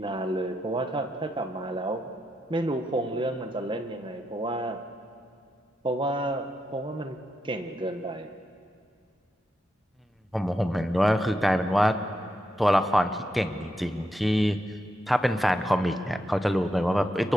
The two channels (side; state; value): both; normal; correlation 0.84